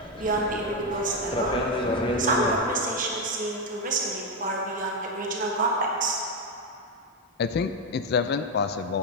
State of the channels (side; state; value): both; normal; correlation 0.07